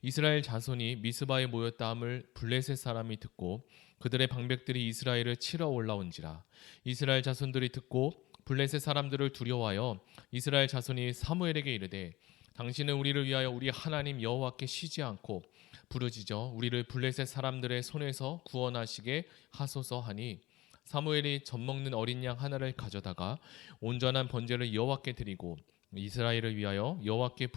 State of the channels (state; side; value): quieter; right; 18.7 dB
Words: 자손이 미스바에 모였다 함을 블레셋 사람이 듣고 그들의 방백들이 이스라엘을 치러 올라온지라. 이스라엘 자손들이 듣고 블레셋 사람들을 두려워하여 이스라엘 자손이 사무엘에게 이르되 당신은 우리를 위하여 우리 하나님 여호와께 쉬지 않고 부르짖어 우리를 블레셋 사람들의 손에서 구원하시게 하소서 하니 사무엘이 젖먹는 어린 양 하나를 가져다가 온전한 번제를 여호와께 드리고 이스라엘을 위하여 여호와께